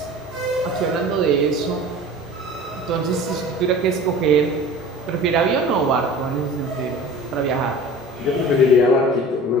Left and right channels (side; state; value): both; normal; correlation 0.40